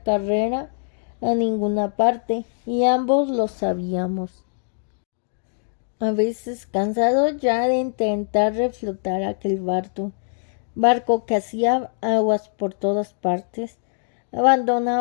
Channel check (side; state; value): right; silent; digital silence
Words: carrera a ninguna parte, y ambos lo sabíamos. A veces, cansado ya de intentar reflotar aquel barco que hacía aguas por todas partes,